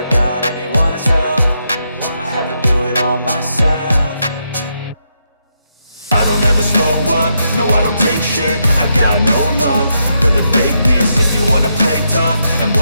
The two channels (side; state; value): both; inverted; correlation -0.81